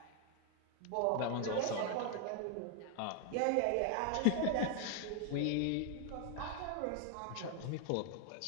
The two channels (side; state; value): both; different; correlation 0.01